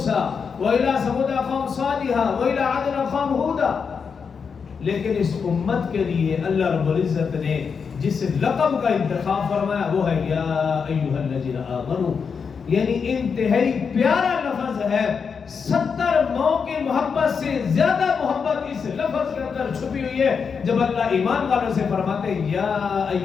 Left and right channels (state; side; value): quieter; right; 6.0 dB